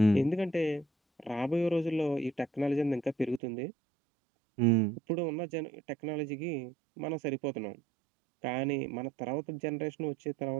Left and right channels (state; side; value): drops out; left; at 3.4 s